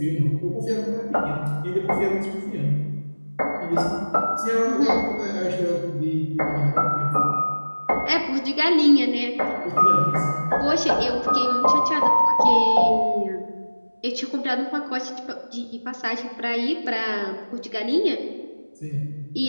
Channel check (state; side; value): inverted; both; correlation -1.00